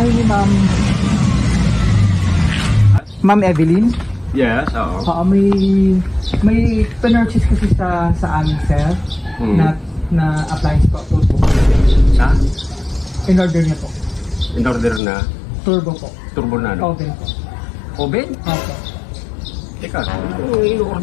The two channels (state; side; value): drops out; right; at 15.0 s